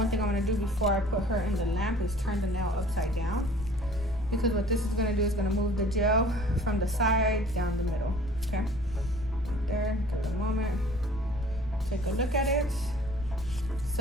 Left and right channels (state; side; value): noise; left; rumble, 12 dB below the sound